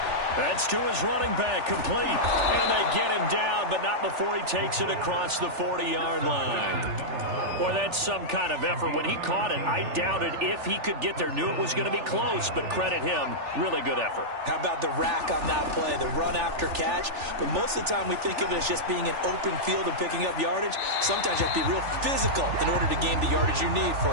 That's to his running back, complete. And they get him down, but not before he takes it across the 40-yard line. Boy, that's some kind of effort. When he caught it, I doubted if he could get there. Knew it was going to be close, but credit him. Really good effort. How about the rack on that play, the run after catch? But most of the time we think of it as just being an open field and picking up yardage. Sometimes you have to be real physical in order to gain the yardage you need for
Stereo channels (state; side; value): late; left; 3.4 ms